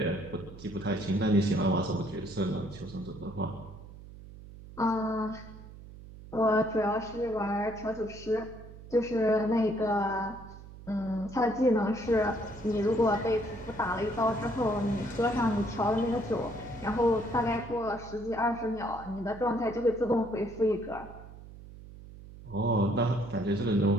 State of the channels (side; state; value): right; noise; hum, 16 dB below the sound